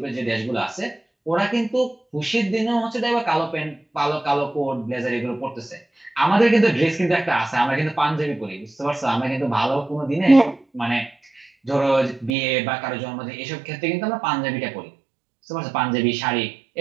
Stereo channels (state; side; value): drops out; left; at 12.4 s